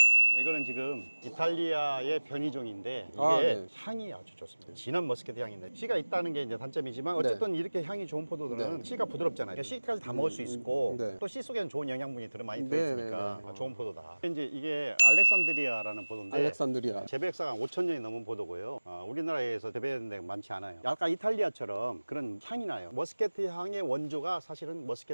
이거는 지금 이탈리아의 변이종인데 이게 네. 향이 아주 좋습니다. 진한 머스켓 향인데 씨가 있다는 게 이제 단점이지만 어쨌든 이렇게 향이 좋은 포도들은 씨가 부드럽잖아요. 그러니까 씨까지 다 먹을 수 있고 네. 또 씨 속에는 좋은 영양분이 많이 네, 들어있으니까 네, 네. 좋은 포도다. 이제 이게 알렉산드리아라는 포도인데 알렉산드리아. 재배역사가 5,000년이 넘은 포도고요. 우리나라에서 재배되는 데가 많지 않아요. 약간 이탈리아처럼 그런 향이 나요. 머스켓 향의 원조가 사실은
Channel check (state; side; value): inverted; both; correlation -1.00